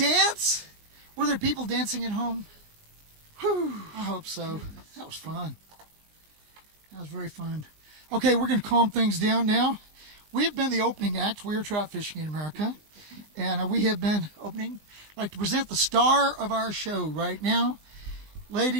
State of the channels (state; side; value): late; left; 19 ms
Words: Were there people dancing at home? Whew, I hope so. That was fun. That was very fun. Okay, we're going to calm things down now. We've been the opening act. We are Trout Fishing in America. And we have been opening. I'd like to present the star of our show right now.